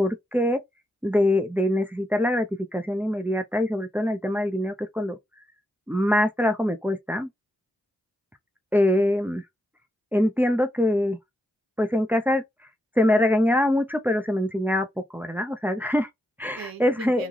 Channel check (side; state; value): both; normal; correlation 0.83